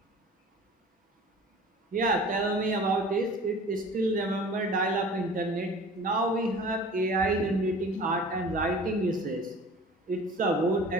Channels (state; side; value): normal; both; correlation 0.43